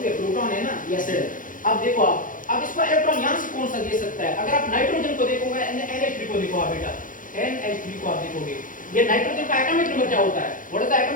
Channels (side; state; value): right; late; 0.39 ms